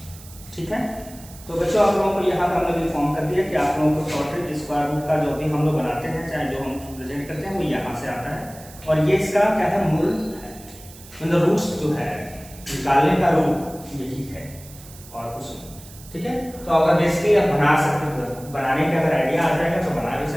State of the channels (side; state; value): right; noise; hiss, 19 dB below the sound